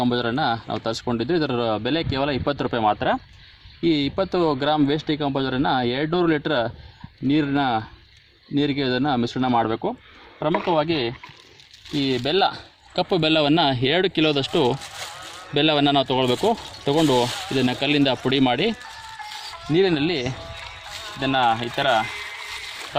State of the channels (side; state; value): both; identical; correlation 1.00